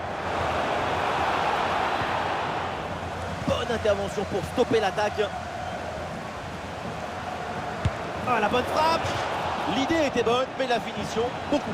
Bonne intervention pour stopper l'attaque. Ah, la bonne frappe. L'idée était bonne, mais la finition, beaucoup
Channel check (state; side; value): identical; both; correlation 1.00